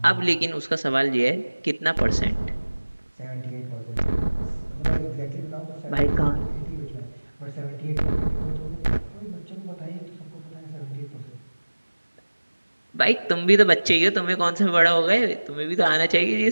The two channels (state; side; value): inverted; both; correlation -1.00